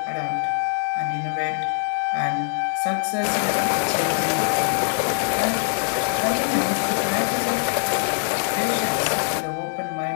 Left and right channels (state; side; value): silent; right; digital silence